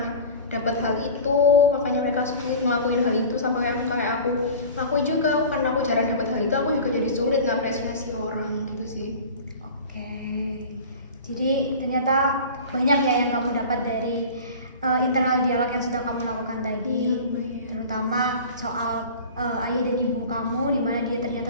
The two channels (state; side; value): inverted; both; correlation -0.38